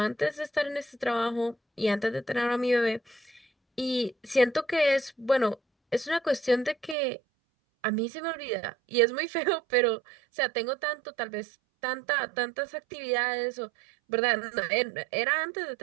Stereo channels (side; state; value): left; drops out; at 7.0 s